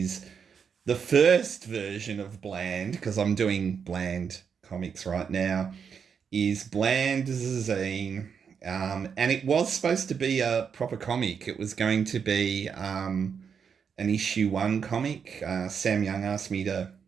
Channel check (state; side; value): quieter; left; 6.7 dB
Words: the first version of Bland, because I'm doing Bland comics right now, is Bland zine. And it was supposed to be a proper comic. It was going to be an issue one comic. Sam Young asked me to